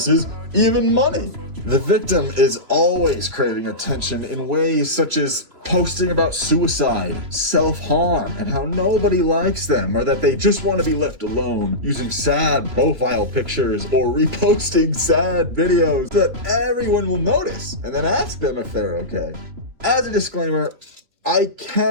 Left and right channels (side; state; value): left; late; 3.2 ms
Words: even money. The victim is always craving attention in ways such as posting about suicide, self-harm, and how nobody likes them, or that they just want to be left alone, using sad profile pictures or reposting sad videos that everyone will notice and then ask them if they're okay. As a disclaimer, I